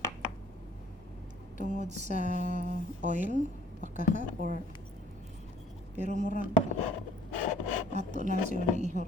tungod sa oil pakaha or pero murag ato na siya ni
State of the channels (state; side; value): normal; both; correlation 0.56